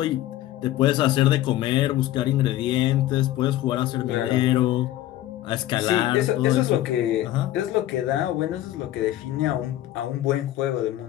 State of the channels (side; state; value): right; quieter; 14.1 dB